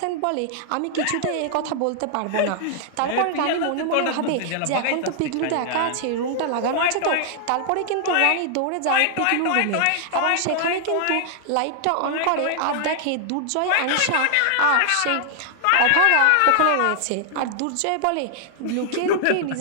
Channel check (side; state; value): both; different; correlation 0.00